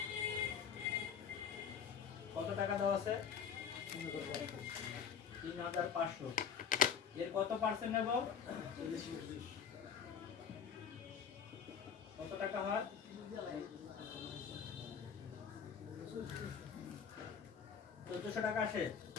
কত টাকা দেওয়া আছে, 3500। এর কত পার্সেন্ট নেব, কত টাকা হয়, 1400 টাকা আসে।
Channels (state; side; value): quieter; right; 7.1 dB